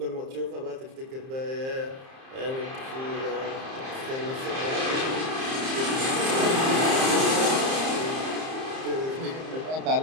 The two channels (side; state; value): left; late; 30 ms